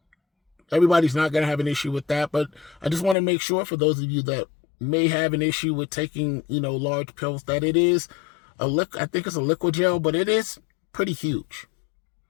Everybody's not going to have an issue with that, but I just want to make sure for those of you that may have an issue with taking, large pills, that it is I think it's a liquid gel, but it is pretty huge.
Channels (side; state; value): right; drops out; at 3.2 s